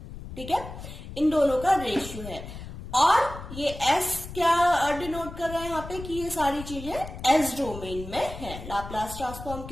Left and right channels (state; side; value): noise; left; rumble, 11 dB below the sound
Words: ठीक है, इन दोनों का रेशियो है। और ये S क्या डिनोट कर रहा है यहाँ पे कि ये सारी चीजें S डोमेन में है। लाप्लास ट्रांसफॉर्म